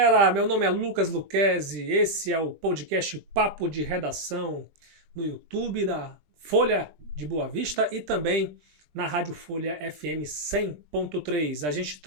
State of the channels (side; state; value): left; late; 20 ms